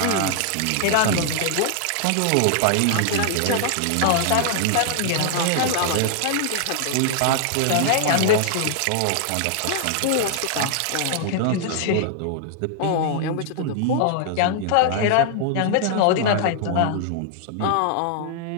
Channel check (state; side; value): different; both; correlation 0.00